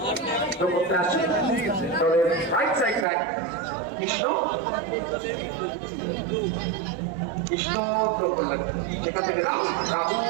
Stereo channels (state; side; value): drops out; left; at 3.1 s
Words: করতে আসছে দলের রাইট সাইড ব্যাক কৃষ্ণ করলেন সেখান থেকে রাহুল